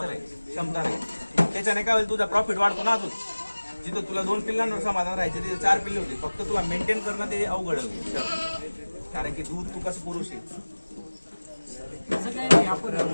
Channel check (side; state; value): both; inverted; correlation -1.00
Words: क्षमता राहील. त्याच्याने काय होईल तुझा प्रॉफिट वाढतो ना. अजून जिथं तुला 2 पिल्लांवर समाधान राहायचं तिथे 4 पिल्ले होते. फक्त तुला मेंटेन करणं ते अवघड होईल कारण की दूध तू कसं पुरुष आहे. आपण